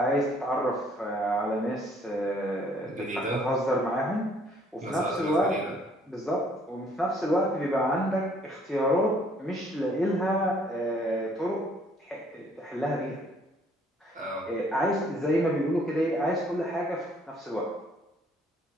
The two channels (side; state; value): both; normal; correlation 0.62